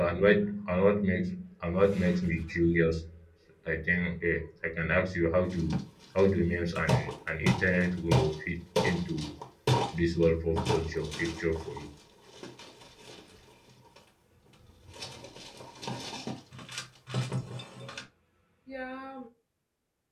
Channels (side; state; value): both; identical; correlation 1.00